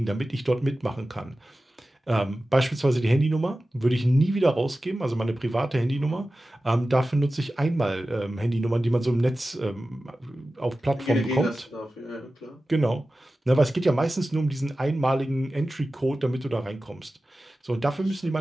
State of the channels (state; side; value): normal; both; correlation 0.95